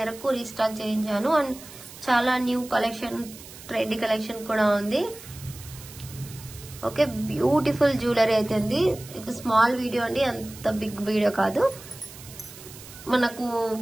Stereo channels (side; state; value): right; noise; hiss, 17 dB below the sound